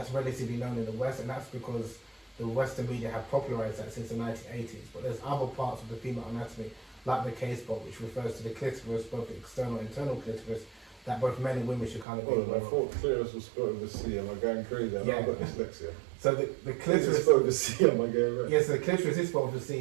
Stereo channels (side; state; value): left; drops out; at 12.1 s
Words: relatively known in the West, and that's because the Western media have popularized that since the 1980s. But there's other parts of the female anatomy, like the K-spot, which refers to the clitoris, both the external and internal clitoris, that both men and women should kind of be aware I thought clitoris was spelled with a C. Am I going crazy? I've got dyslexia. So the clitoris is spelled with a C. Am I going right? Yes, the clitoris is spelled with a